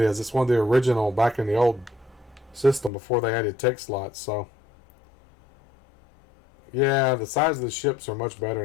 It's one of the original back in the old system before they added tech slots. So yeah, the size of the ships are much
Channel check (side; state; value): right; drops out; at 2.9 s